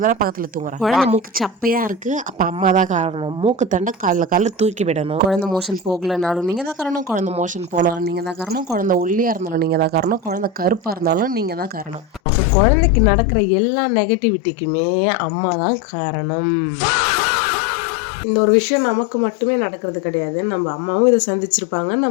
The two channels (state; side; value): drops out; right; at 12.2 s